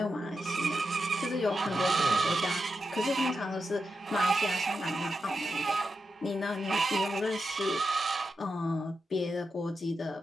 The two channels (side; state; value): both; normal; correlation 0.87